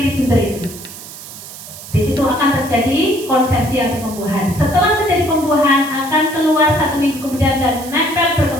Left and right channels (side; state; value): right; noise; hiss, 14 dB below the sound